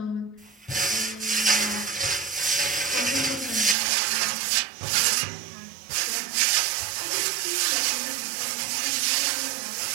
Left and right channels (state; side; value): drops out; left; at 3.8 s